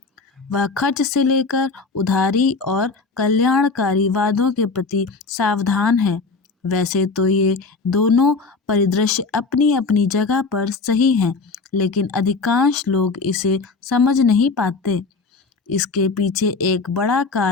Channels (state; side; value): quieter; right; 4.2 dB